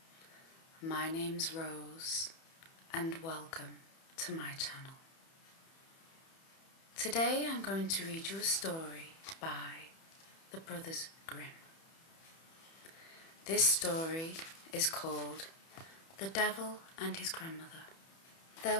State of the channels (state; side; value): late; right; 31 ms